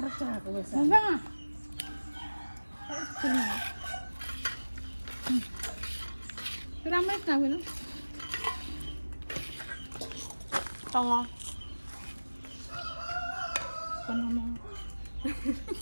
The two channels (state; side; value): inverted; both; correlation -1.00